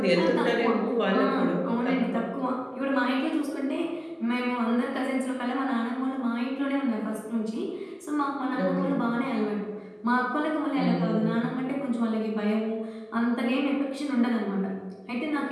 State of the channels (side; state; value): both; identical; correlation 1.00